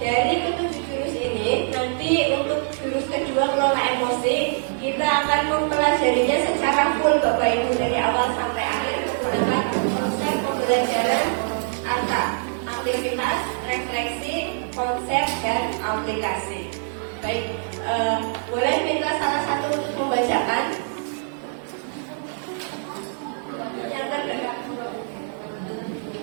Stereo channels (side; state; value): left; silent; 63 dB below the other